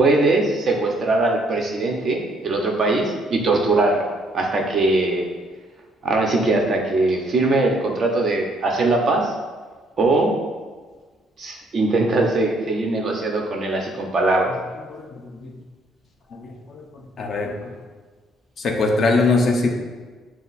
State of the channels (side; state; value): both; normal; correlation 0.66